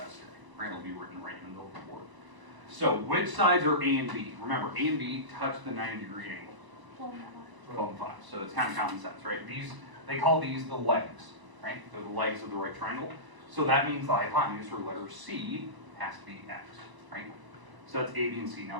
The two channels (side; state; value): left; late; 1.0 ms